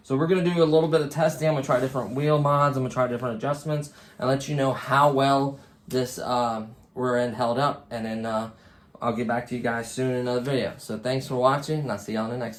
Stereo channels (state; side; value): identical; both; correlation 1.00